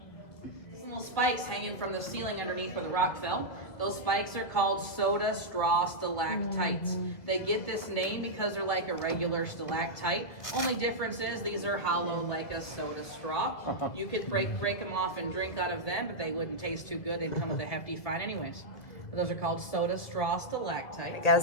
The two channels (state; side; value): late; right; 1.7 ms